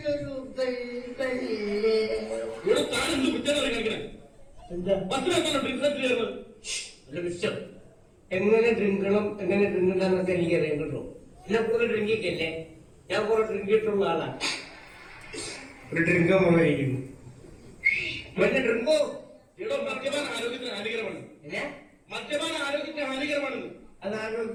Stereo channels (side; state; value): both; identical; correlation 1.00